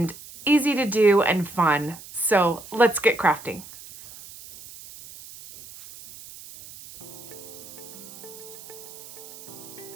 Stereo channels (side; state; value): right; noise; hiss, 17 dB below the sound